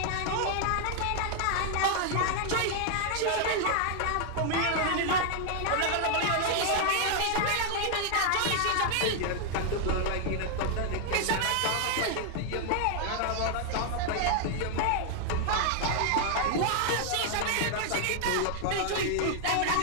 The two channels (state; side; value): different; both; correlation 0.00